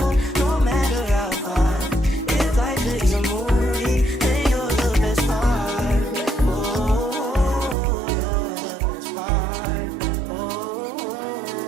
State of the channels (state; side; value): drops out; left; at 7.8 s